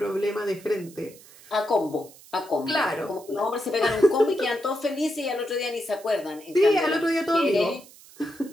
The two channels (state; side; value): noise; right; hiss, 22 dB below the sound